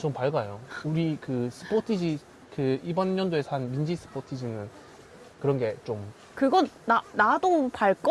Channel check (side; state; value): both; identical; correlation 1.00